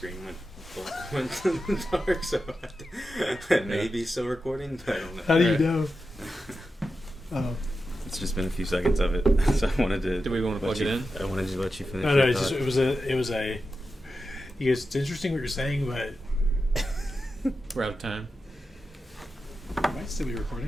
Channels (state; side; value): normal; both; correlation 0.90